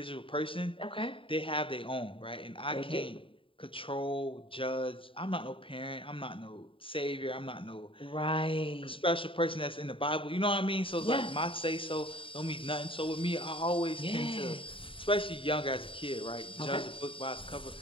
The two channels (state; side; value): late; right; 0.25 ms